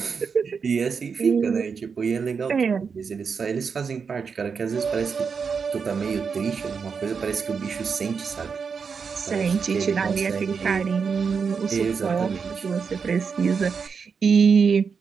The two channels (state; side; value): quieter; left; 5.8 dB